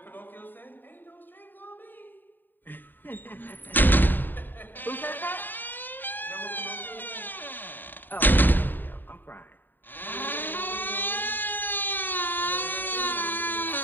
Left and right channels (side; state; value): right; late; 0.092 ms